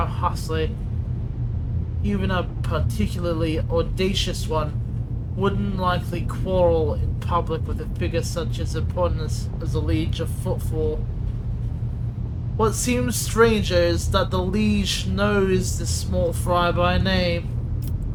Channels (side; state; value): both; identical; correlation 1.00